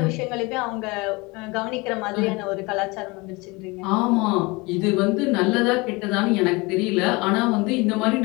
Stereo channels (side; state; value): right; quieter; 25.1 dB